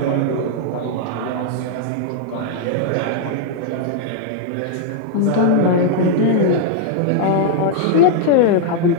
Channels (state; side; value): different; both; correlation -0.01